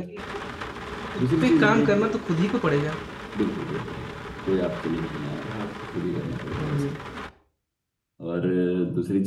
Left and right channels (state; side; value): identical; both; correlation 1.00